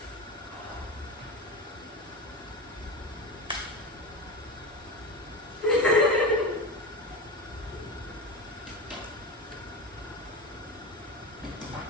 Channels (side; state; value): both; normal; correlation 0.23